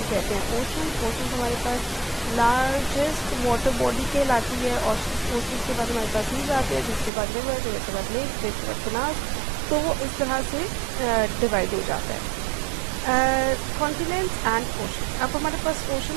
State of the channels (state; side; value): drops out; left; at 7.1 s